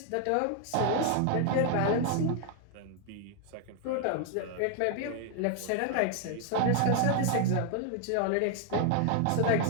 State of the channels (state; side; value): different; both; correlation 0.00